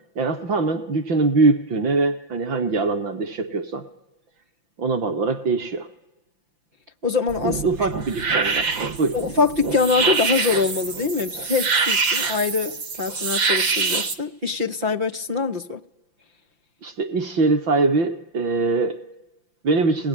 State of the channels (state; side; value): late; left; 5.8 ms